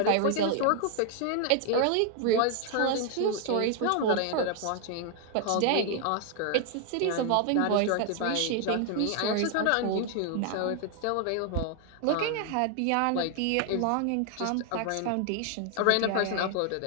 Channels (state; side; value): different; both; correlation 0.00